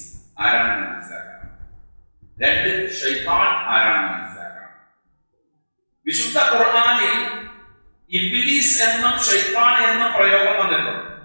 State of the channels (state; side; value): inverted; both; correlation -1.00